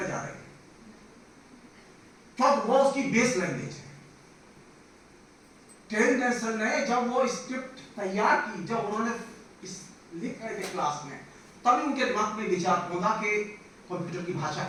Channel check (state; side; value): identical; both; correlation 1.00